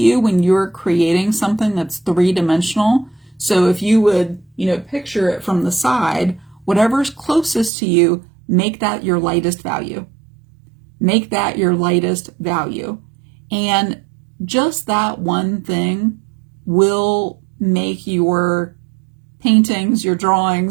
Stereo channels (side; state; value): left; drops out; at 7.7 s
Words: when you're creating something that's three-dimensional, so if you would, picture it from the side, whatever's closest to you, make that your lightest value. Make that your lightest value. And just that one thing will make your paintings, your